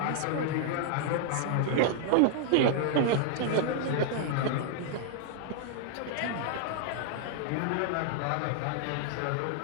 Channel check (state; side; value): different; both; correlation 0.00